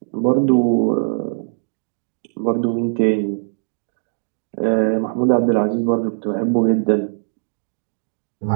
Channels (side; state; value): left; silent; digital silence